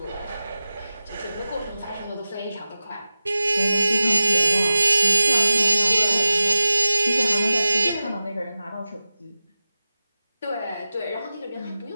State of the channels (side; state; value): both; inverted; correlation -0.94